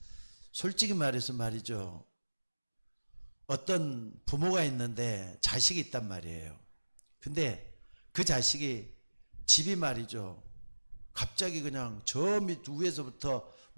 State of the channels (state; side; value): inverted; both; correlation -1.00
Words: 솔직히 말해서 말이죠, 어떤 부모가 있는데 자식이 있단 말이에요. 근데 그 자식이 집이 말이죠, 갑자기 그냥 저 밑 위에서부터